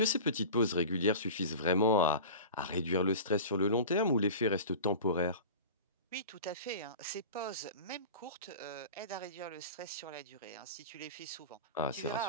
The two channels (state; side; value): inverted; both; correlation -0.34